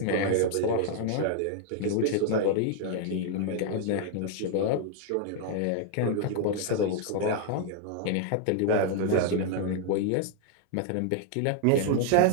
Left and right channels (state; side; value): different; both; correlation 0.00